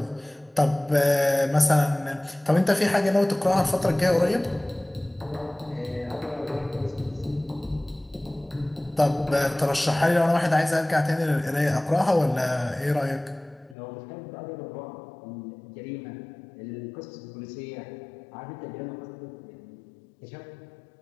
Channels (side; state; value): right; drops out; at 13.8 s